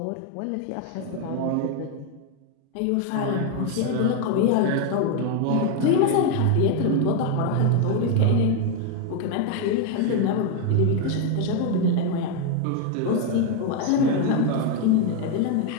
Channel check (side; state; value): both; different; correlation 0.01